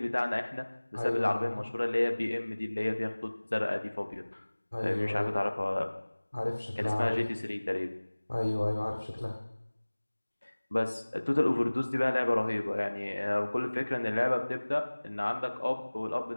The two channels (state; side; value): inverted; both; correlation -1.00